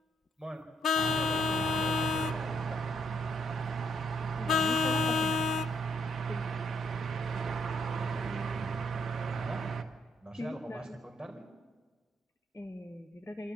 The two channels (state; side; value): normal; both; correlation 0.72